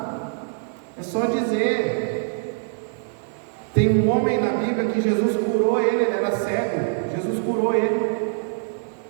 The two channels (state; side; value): silent; left; digital silence